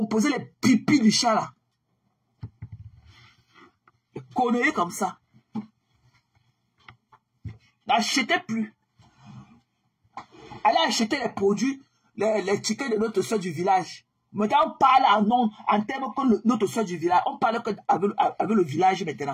les pipis du chat là? Des conneries comme ça. N'achetez plus. Allez acheter les produits, les tickets de notre soeur du village. Maintenant, on parle en termes que notre soeur du village. On parle avec le village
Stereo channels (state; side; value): identical; both; correlation 1.00